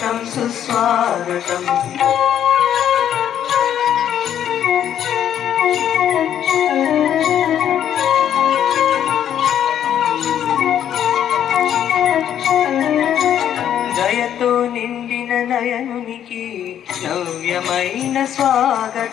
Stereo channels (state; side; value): quieter; right; 10.0 dB